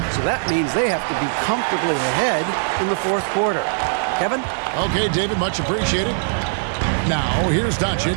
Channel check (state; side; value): silent; left; digital silence